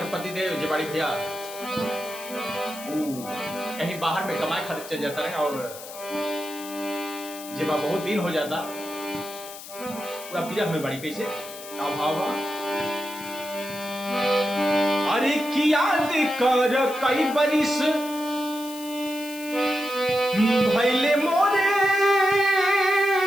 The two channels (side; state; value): left; noise; hiss, 14 dB below the sound